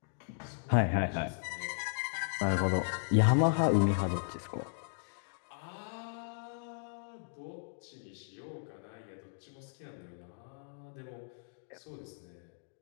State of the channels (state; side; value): silent; right; digital silence